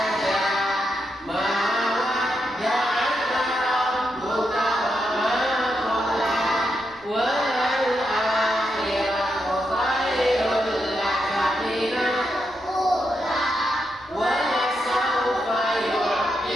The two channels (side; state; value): right; noise; rumble, 28 dB below the sound